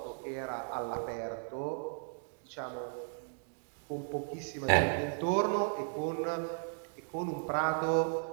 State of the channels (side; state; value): left; silent; 54 dB below the other